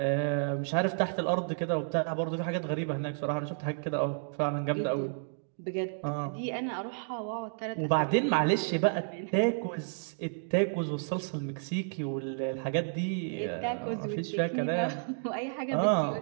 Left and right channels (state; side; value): silent; left; digital silence